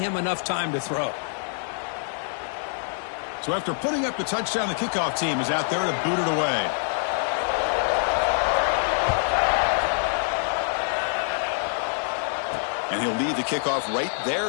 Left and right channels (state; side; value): silent; right; digital silence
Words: enough time to throw. So after putting up the touchdown, the kickoff team is out there to boot it away. And he'll lead the kickoff right